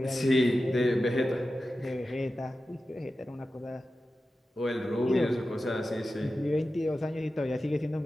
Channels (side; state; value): both; normal; correlation 0.93